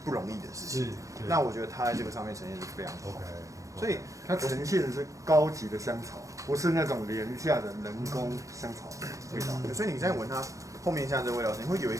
不容易的事情。那我觉得他在这个上面呈现是非常好。所以它呈现的是高级的香草，不是那种廉价的人工香草味道。所以你在闻它后面像这个味道，你会有一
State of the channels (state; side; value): late; left; 0.16 ms